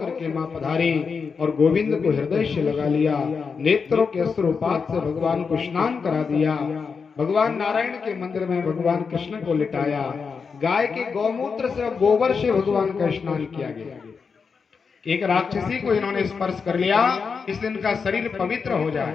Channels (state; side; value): quieter; right; 5.5 dB